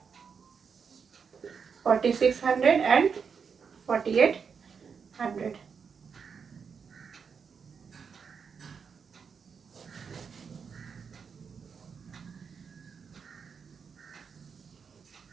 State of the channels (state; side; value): quieter; left; 6.2 dB